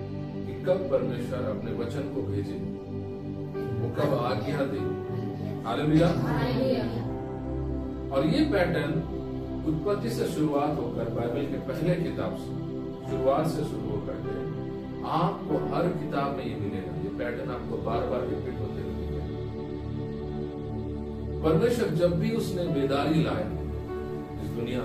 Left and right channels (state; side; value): identical; both; correlation 1.00